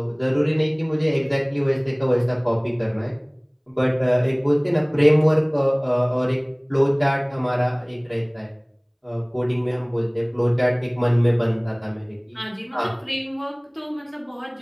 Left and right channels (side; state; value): both; identical; correlation 1.00